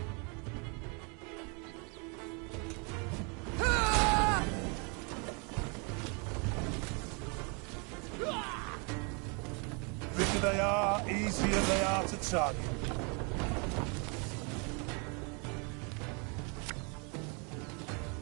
Bigger they are, easier they are to target.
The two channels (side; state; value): left; quieter; 34.0 dB